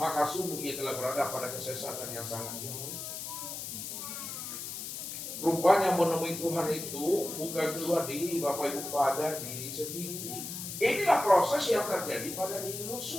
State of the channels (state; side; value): noise; left; hiss, 7 dB below the sound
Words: sungguh ia telah berada pada kesesatan yang sangat jauh. Rupanya menemui Tuhan itu bukan keluar diri Bapak Ibu, pada diri sendiri. Inilah proses yang terjadi pada diri